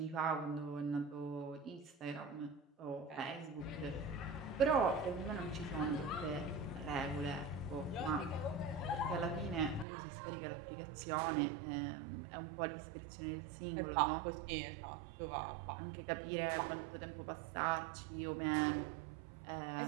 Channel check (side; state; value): left; drops out; at 9.9 s